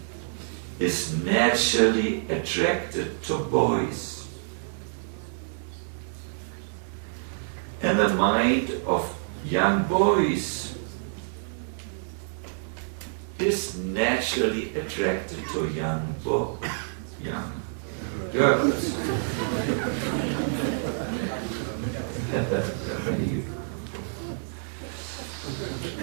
is naturally attracted to boys, and the mind of young boys is naturally attracted to young girls.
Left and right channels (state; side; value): silent; left; digital silence